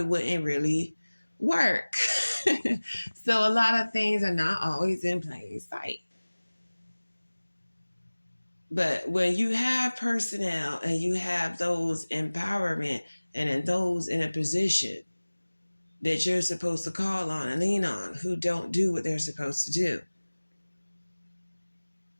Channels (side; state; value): both; inverted; correlation -1.00